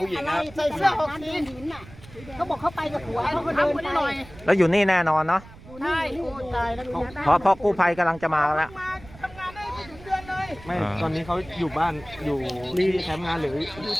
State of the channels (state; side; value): noise; right; rumble, 19 dB below the sound